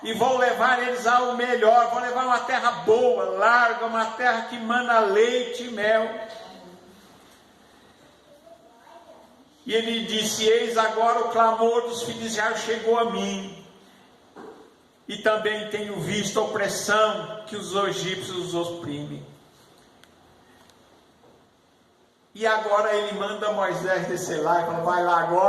e vou levar eles ao melhor. Vou levar uma terra boa, larga, uma terra que mana leite e mel. E ele disse: eis agora o clamor dos filhos de Israel chegou a mim, e também tenho visto a opressão que os egípcios os oprimem. E agora ele manda Moisés descer lá e fala: vai lá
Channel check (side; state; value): both; identical; correlation 1.00